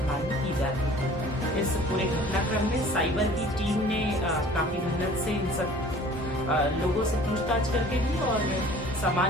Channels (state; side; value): normal; both; correlation 0.49